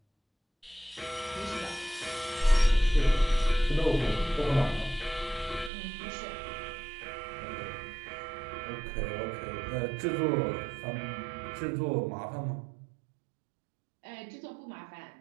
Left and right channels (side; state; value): left; drops out; at 5.7 s